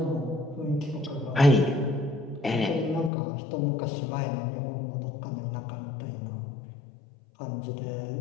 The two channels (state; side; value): drops out; right; at 3.1 s